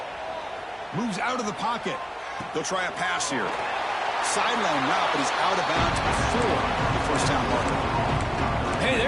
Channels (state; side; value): identical; both; correlation 1.00